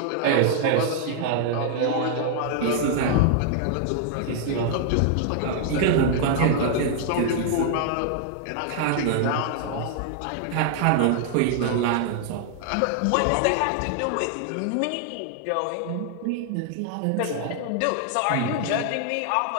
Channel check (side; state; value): both; different; correlation 0.00